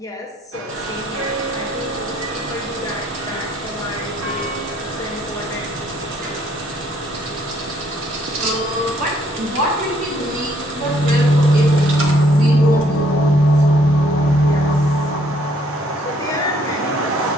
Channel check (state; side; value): normal; both; correlation 0.66